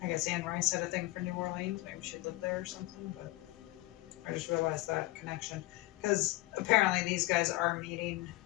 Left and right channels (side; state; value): right; quieter; 19.6 dB